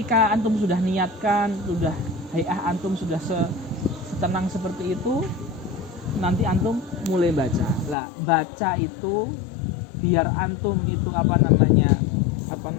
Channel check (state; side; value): drops out; right; at 8.0 s